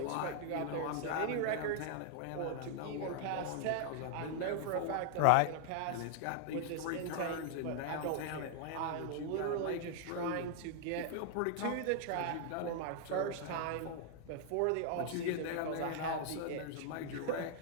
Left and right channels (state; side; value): different; both; correlation 0.00